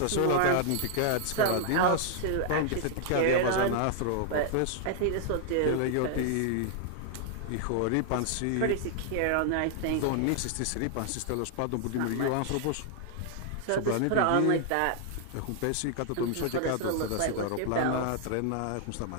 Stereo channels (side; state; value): both; different; correlation 0.00